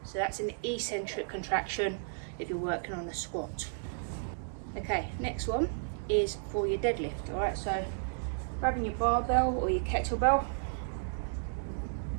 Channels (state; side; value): silent; left; digital silence